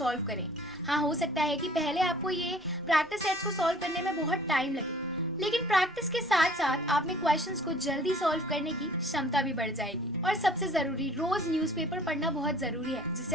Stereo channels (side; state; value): both; normal; correlation 0.52